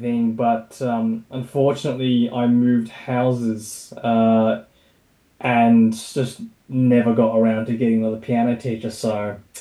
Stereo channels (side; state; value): both; identical; correlation 1.00